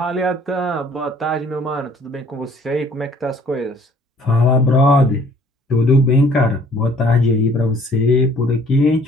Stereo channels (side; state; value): both; normal; correlation 0.57